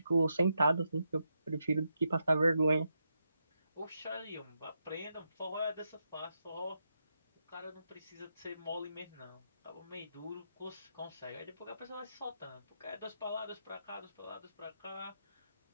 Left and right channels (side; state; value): both; inverted; correlation -0.84